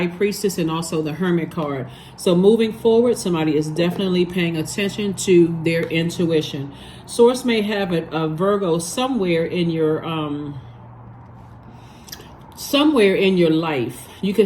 Priestess and also the Hermit card. So moving forward, somebody is definitely paying attention to their intuition. Source may have a Virgo somewhere in your life. You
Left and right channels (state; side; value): identical; both; correlation 1.00